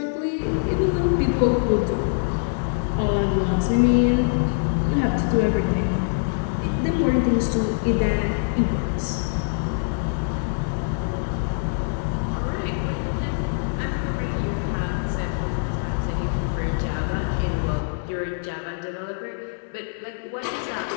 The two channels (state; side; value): silent; right; digital silence